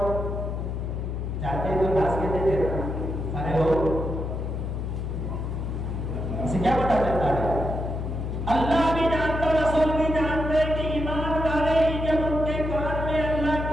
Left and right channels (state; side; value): noise; left; hum, 3 dB below the sound